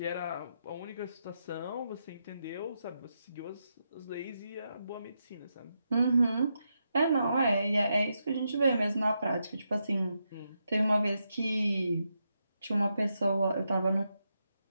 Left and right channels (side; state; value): both; inverted; correlation -0.84